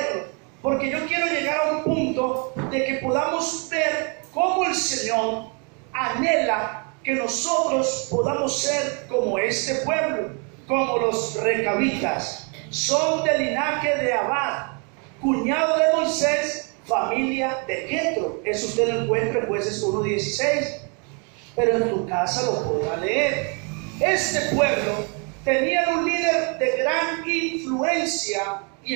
porque yo quiero llegar a un punto de que podamos ver cómo el Señor anhela que nosotros podamos ser como este pueblo, como los recabitas. Son del linaje de Abad, cuñado de Moisés, familia de Jetro. Eso usted lo encuentra en Jueces 1:16, pero en tu casa lo podrá leer. Este pueblo tenía un líder de gran influencia, y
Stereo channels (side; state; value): left; quieter; 36.0 dB